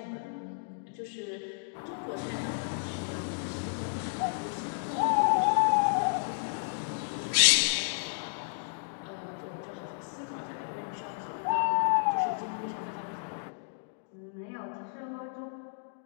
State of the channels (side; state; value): right; silent; digital silence